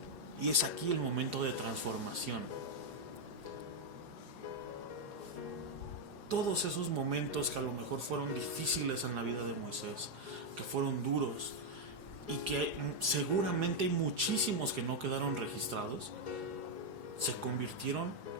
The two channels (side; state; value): left; late; 4.9 ms